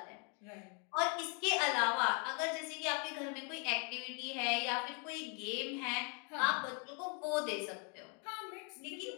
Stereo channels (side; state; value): right; quieter; 36.9 dB